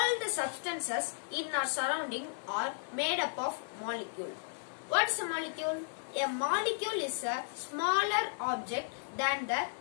the substances in our surrounding are made up of molecule. What is a molecule? A molecule is a smaller object than the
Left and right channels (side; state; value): right; silent; 55 dB below the other